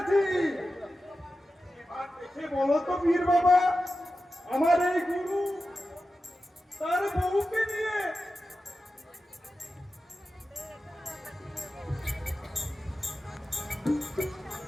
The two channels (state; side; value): normal; both; correlation 0.92